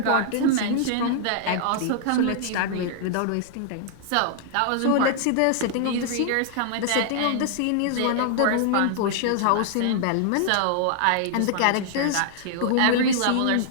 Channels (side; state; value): both; different; correlation -0.01